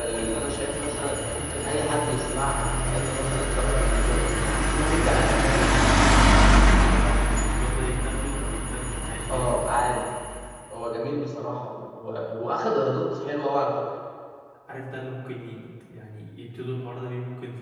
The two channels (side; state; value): both; identical; correlation 1.00